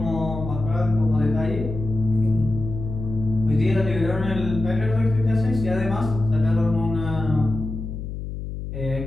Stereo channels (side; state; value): left; noise; hum, 7 dB below the sound